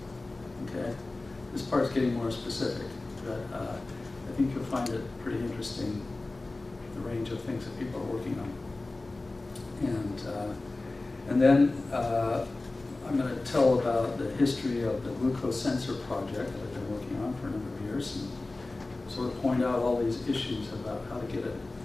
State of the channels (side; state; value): right; quieter; 3.1 dB